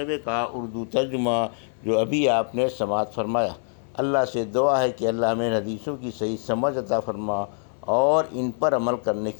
کا اردو ترجمہ جو ابھی آپ نے سماعت فرمایا۔ اللہ سے دعا ہے کہ اللہ ہمیں حدیثوں کی صحیح سمجھ عطا فرما اور ان پر عمل کرنے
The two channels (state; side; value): silent; right; digital silence